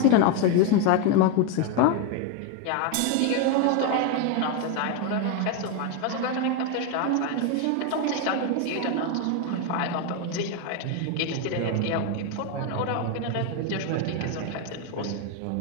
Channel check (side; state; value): both; different; correlation 0.02